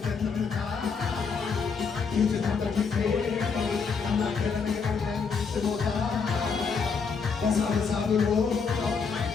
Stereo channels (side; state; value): right; quieter; 5.5 dB